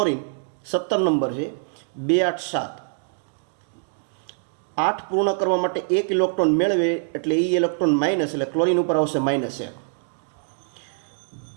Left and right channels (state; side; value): silent; left; digital silence